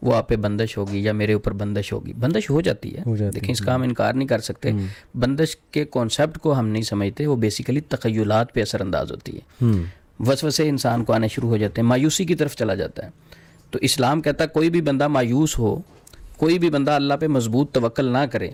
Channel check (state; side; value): identical; both; correlation 1.00